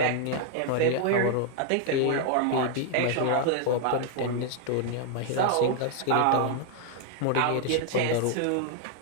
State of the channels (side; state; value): both; different; correlation 0.00